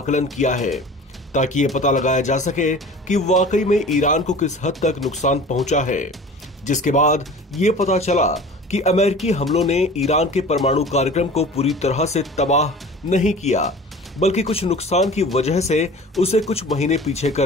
किया है, ताकि ये पता लगाया जा सके कि वाकई में ईरान को किस हद तक नुकसान पहुंचा है। जिसके बाद ये पता चला कि अमेरिकी हमलों ने ईरान के परमाणु कार्यक्रम को पूरी तरह से तबाह नहीं किया, बल्कि कुछ नुकसान की वजह से उसे कुछ महीने पीछे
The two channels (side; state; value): both; normal; correlation 0.41